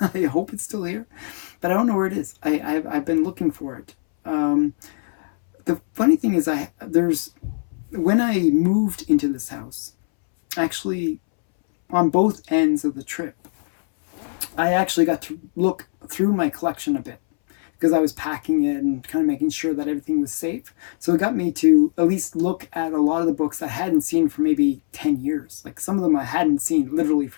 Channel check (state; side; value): silent; right; 64 dB below the other